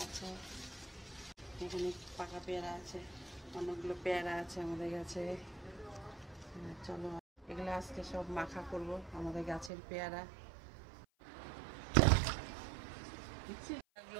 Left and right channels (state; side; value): drops out; left; at 9.7 s